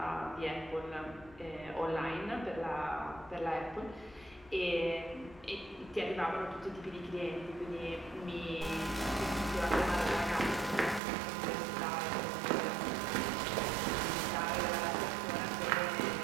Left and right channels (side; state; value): left; drops out; at 11.0 s